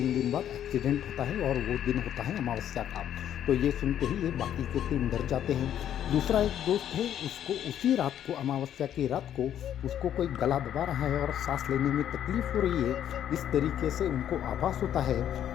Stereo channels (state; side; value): quieter; right; 10.4 dB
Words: दिन बाद एक्सीडेंट होता है और वो दिन होता है अमावस्या का। तो ये सुनते ही ये बाकी के 3 डर जाते हैं। दूसरा एक दोस्त है उसको उसी रात को, अमावस्या की रात को, उसको कोई गला दबा रहा है और सांस लेने में तकलीफ हो रही है। इस तरीके से उनको आभास होता है